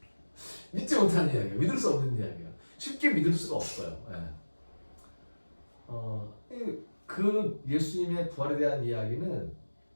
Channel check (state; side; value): inverted; both; correlation -1.00